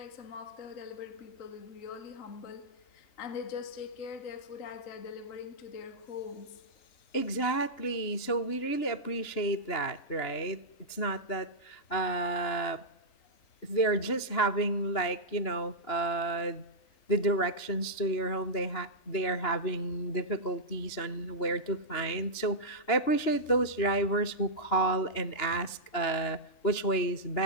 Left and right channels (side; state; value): right; late; 2.9 ms